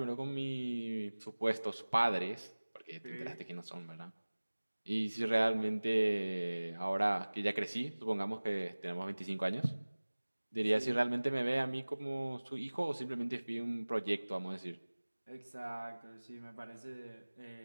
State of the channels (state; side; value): inverted; both; correlation -1.00